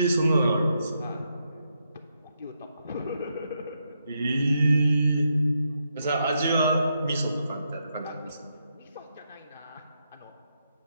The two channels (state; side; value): inverted; both; correlation -0.81